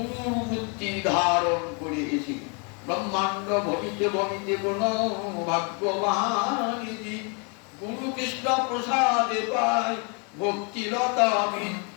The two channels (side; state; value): right; quieter; 35.6 dB